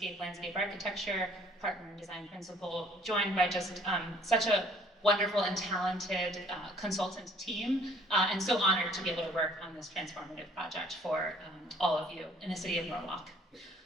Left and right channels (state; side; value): normal; both; correlation 0.58